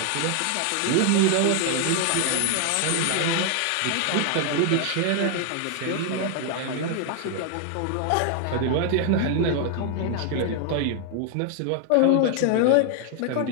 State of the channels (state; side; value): different; both; correlation 0.00